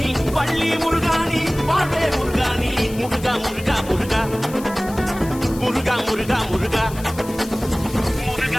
பள்ளி முருகாணி பாட்டே முருகாணி முருகா முருகா முருகா முருகா முருகா முருகா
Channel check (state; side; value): noise; left; hiss, 17 dB below the sound